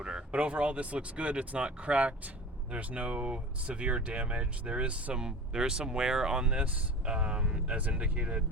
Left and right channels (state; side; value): normal; both; correlation 0.36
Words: But overall, this looks good. It's not cracked. There's no severe damage. There is some wear on this, as indicated